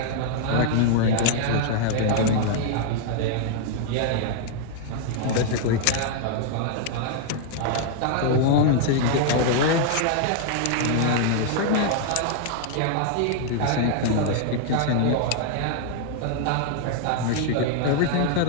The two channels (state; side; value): different; both; correlation 0.00